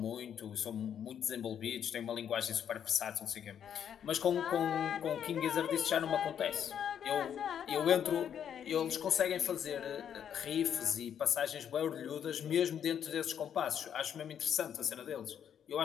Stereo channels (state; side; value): quieter; right; 8.9 dB